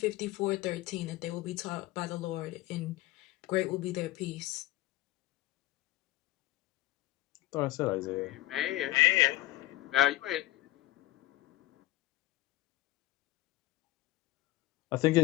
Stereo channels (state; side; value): quieter; right; 17.0 dB